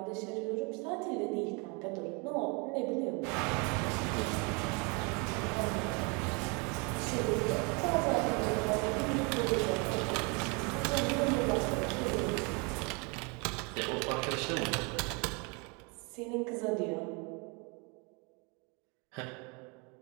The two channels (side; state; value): left; quieter; 31.5 dB